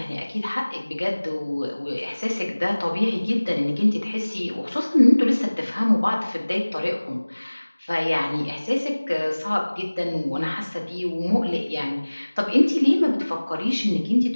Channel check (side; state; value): both; inverted; correlation -1.00